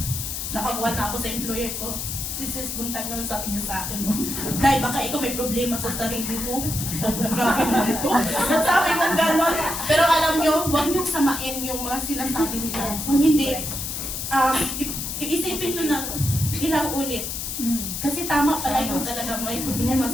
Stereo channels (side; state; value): left; noise; hiss, 4 dB below the sound